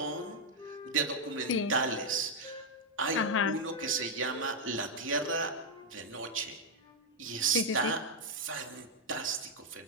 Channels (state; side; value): normal; both; correlation -0.01